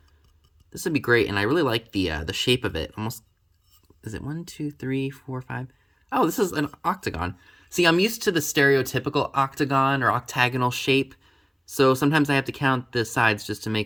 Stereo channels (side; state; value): both; identical; correlation 1.00